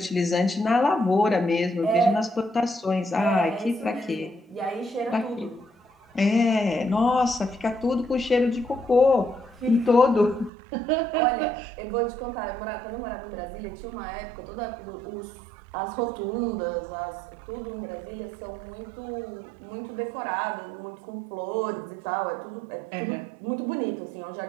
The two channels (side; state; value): left; drops out; at 10.5 s